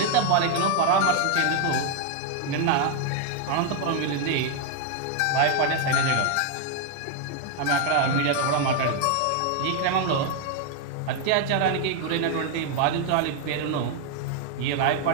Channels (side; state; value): both; different; correlation 0.00